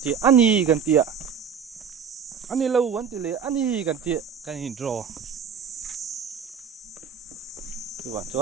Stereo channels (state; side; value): quieter; left; 7.0 dB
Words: đề anh đi cần tiền anh đi lâu vấn đề anh đi cần tiền cần hình rò